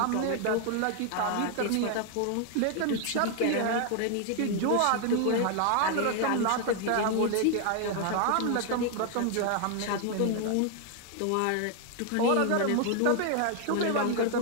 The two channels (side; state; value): both; different; correlation 0.00